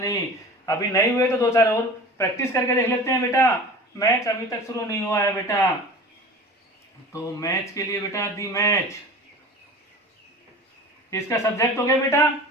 अभी नहीं हुए तो दो चार और प्रैक्टिस करके देख लेते हैं बेटा। मैच अभी तक शुरू नहीं हुआ है बेटा, तो मैच के लिए बेटा दी मैच, इसका सब्जेक्ट हो गया बेटा,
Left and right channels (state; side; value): normal; both; correlation 0.38